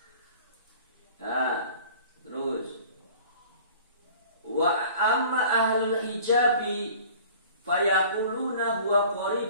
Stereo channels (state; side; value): inverted; both; correlation -0.46